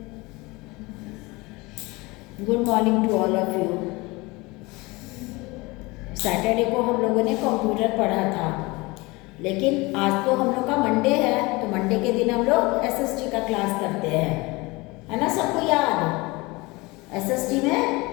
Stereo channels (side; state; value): right; quieter; 23.7 dB